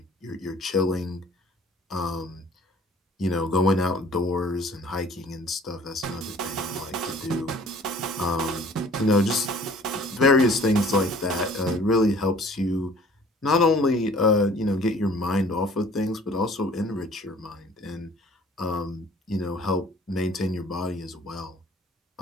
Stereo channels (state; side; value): normal; both; correlation 0.52